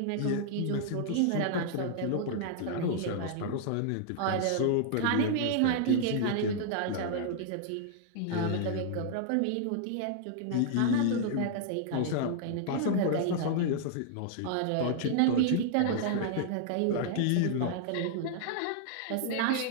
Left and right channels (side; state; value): both; different; correlation -0.01